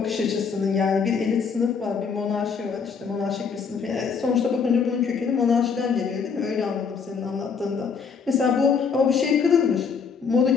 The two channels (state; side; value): quieter; right; 5.9 dB